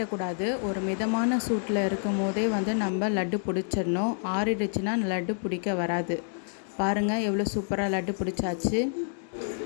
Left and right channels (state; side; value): silent; right; 59 dB below the other